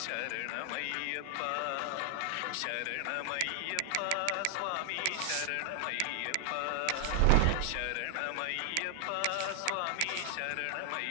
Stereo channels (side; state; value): both; different; correlation 0.00